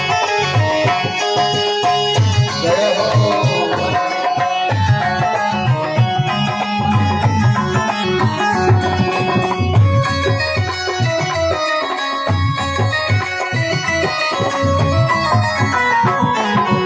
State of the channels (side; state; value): both; identical; correlation 1.00